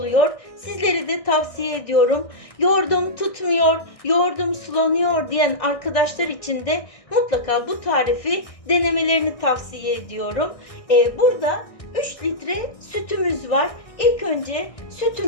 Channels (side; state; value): right; late; 1.6 ms